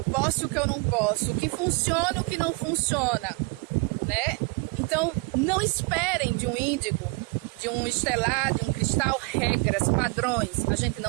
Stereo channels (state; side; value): quieter; left; 27.9 dB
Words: posso e o que eu não posso, o que funciona e o que não funciona, né? Então, não esperem de um índigo, de um estelar, de um cristal, regras, padrões. A gente